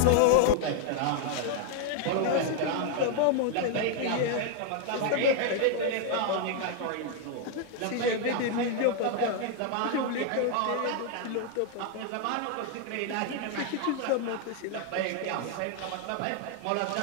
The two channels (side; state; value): both; different; correlation 0.00